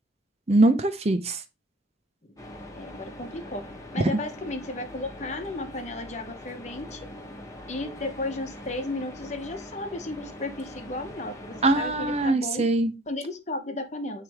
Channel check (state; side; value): normal; both; correlation 0.51